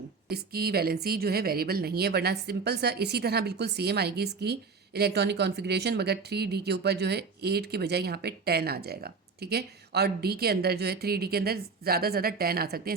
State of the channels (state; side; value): quieter; left; 4.8 dB